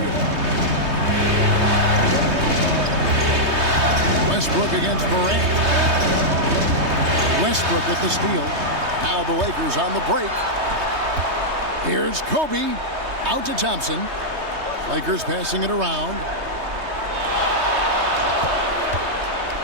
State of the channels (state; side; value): late; left; 3.2 ms